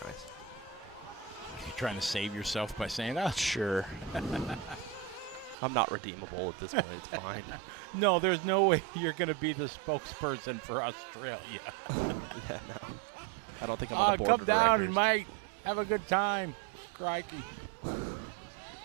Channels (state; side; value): drops out; left; at 5.6 s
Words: You're trying to save yourself by saying, oh, Sure. I'm not redeemable at this point. It's fine. no, there's no way you're going to be the spokesperson for Australia. Yeah, no. I don't think I'm on the board Come of down, directors. mate. Have a good time. Crikey. They're